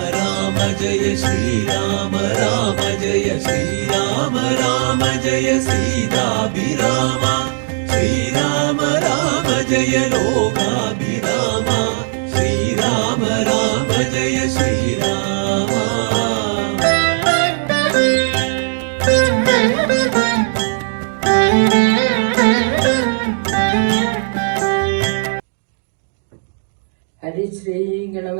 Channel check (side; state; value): left; silent; digital silence